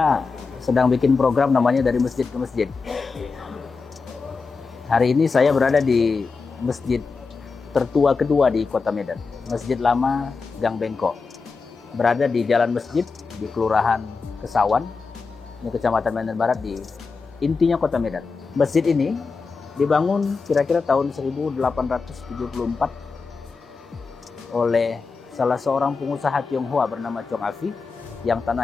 sedang bikin program namanya Dari Masjid ke Masjid. Hari ini saya berada di masjid tertua kedua di Kota Medan, Masjid Lama Gang Bengkok. Berada di Jalan Masjid di Kelurahan Kesawan, ini Kecamatan Medan Barat, di intinya Kota Medan. Masjid ini dibangun kira-kira tahun 1874 oleh salah seorang pengusaha Tionghoa bernama Chong Afi, yang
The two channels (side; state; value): right; quieter; 4.6 dB